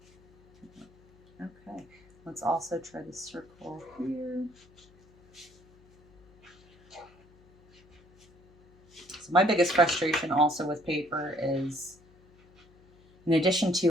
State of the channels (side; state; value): left; noise; hum, 28 dB below the sound